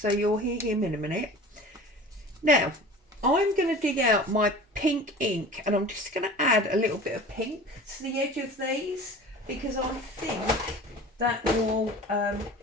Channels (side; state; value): both; normal; correlation 0.40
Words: you'll hear him in a minute. Now I'm going to dig out my pink ink, and I'm just going to add a little bit of pink to the edge of these, because I think that will